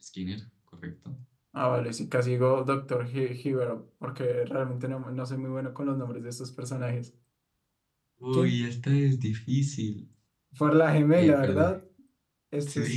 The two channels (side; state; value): both; identical; correlation 1.00